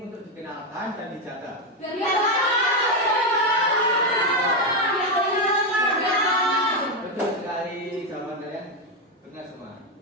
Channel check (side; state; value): both; normal; correlation 0.07